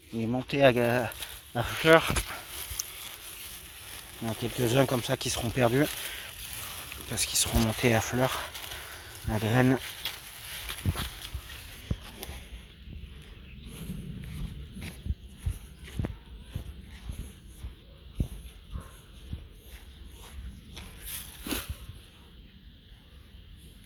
à fleur. Il y en a quelques-uns comme ça qui seront perdus parce qu'ils seront montés à fleur, à graines.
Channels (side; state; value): both; identical; correlation 1.00